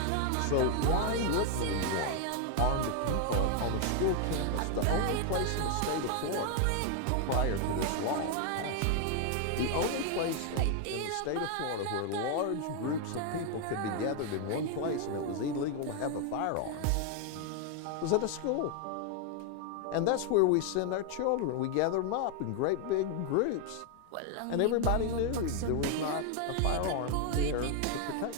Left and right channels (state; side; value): different; both; correlation 0.00